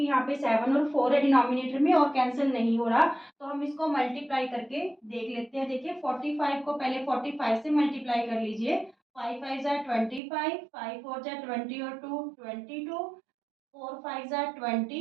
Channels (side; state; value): left; drops out; at 10.2 s